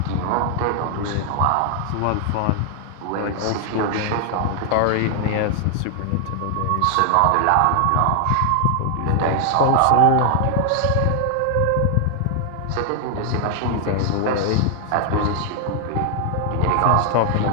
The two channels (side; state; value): both; different; correlation 0.00